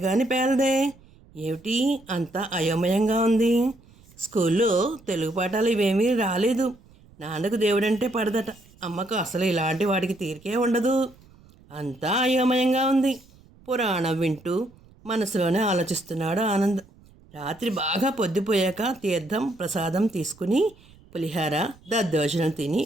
గాని పేలదే. ఏమిటి అంతా అయోమయంగా ఉంది. స్కూల్లో తెలుగు పాఠాలు ఇవేమీ రాలేదు. నాన్నకు దేవుడంటే పడదట, అమ్మకు అసలు ఇలాంటి వాడికి తీరికే ఉండదు. అంతా అయోమయంగా ఉంది. పురాణం వింటూ మనసులోనే ఆలోచిస్తున్నాడు ఆనంద్. రాత్రి బాగా పొద్దుపోయాక తీర్థం ప్రసాదం తీసుకుని పులిహార దద్దోజనం తిని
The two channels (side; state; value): right; noise; rumble, 26 dB below the sound